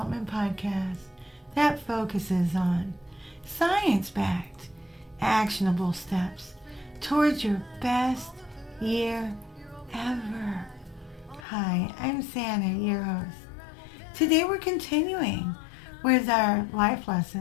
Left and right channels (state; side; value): drops out; right; at 11.5 s